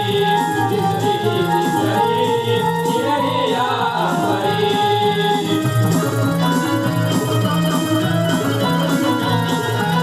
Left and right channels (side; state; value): both; identical; correlation 1.00